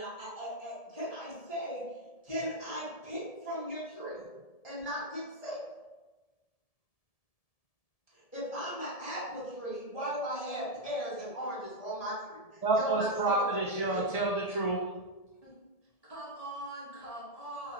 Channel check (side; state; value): right; late; 1.7 ms